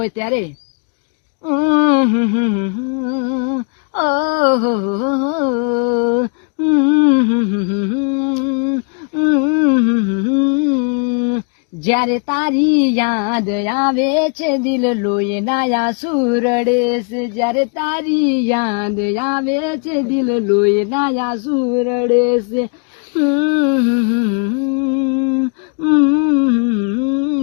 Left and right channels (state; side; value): quieter; right; 39.3 dB